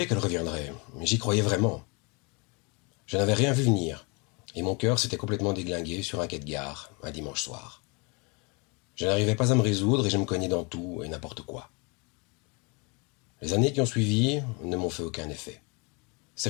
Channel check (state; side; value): quieter; right; 30.4 dB